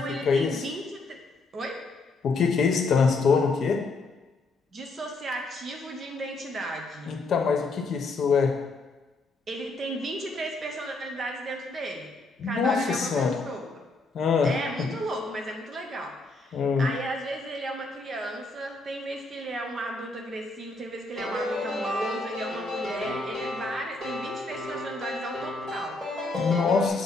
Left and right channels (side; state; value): right; quieter; 3.3 dB